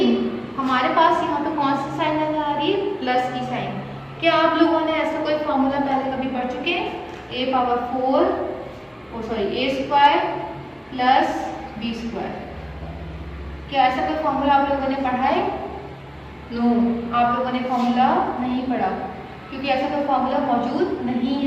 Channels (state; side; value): identical; both; correlation 1.00